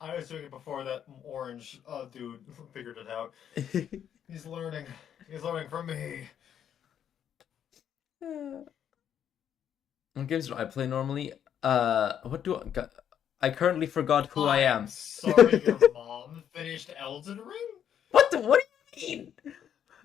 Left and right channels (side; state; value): right; quieter; 9.2 dB